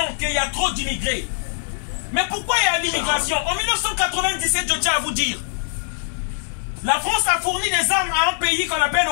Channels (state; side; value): silent; right; 57 dB below the other